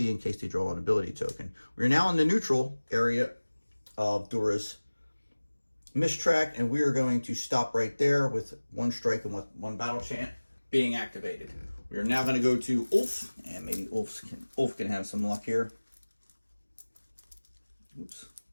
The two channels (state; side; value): inverted; both; correlation -1.00